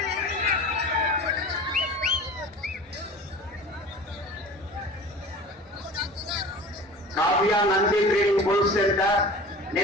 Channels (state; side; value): normal; both; correlation 0.39